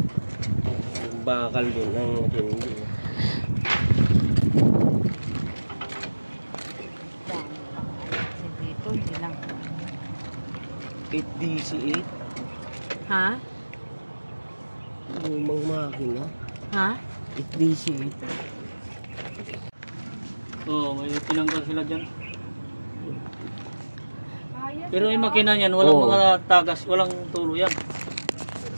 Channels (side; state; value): both; inverted; correlation -1.00